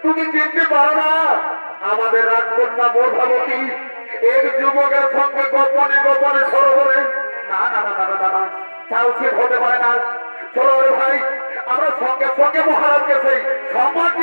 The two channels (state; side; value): inverted; both; correlation -1.00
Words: তুমি চিনতে পারো না আমাদের রাজকন্যা প্রভাবতী এক যুবকের সঙ্গে গোপনে গোপনে সরোবরে? না না না না না না, তা উচিত হতে পারে না। চলো রে ভাই, আমরা সঙ্গে সঙ্গে মহারাজকে সেই